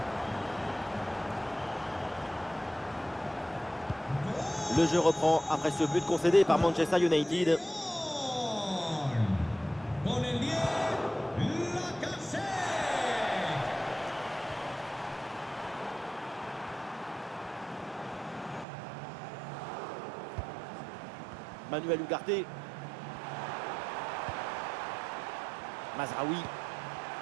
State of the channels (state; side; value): drops out; left; at 18.7 s